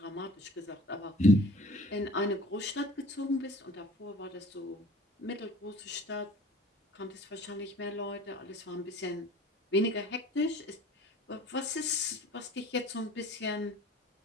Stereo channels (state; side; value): normal; both; correlation 0.47